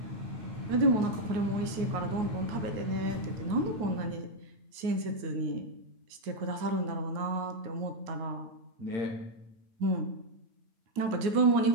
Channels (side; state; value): left; late; 9.4 ms